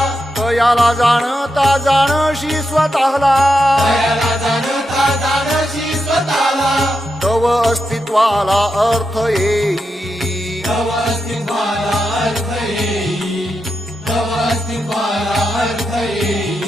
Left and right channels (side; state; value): both; normal; correlation 0.86